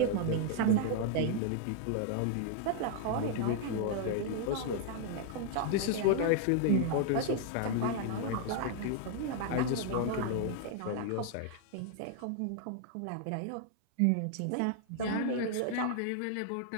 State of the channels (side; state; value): both; different; correlation 0.00